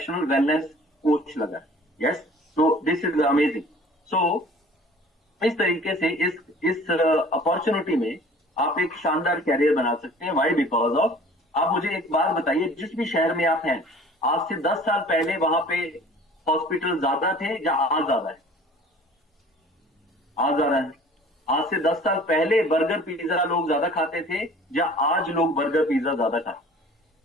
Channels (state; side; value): normal; both; correlation 0.48